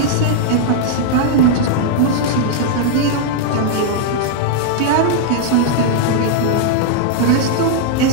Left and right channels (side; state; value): both; different; correlation -0.01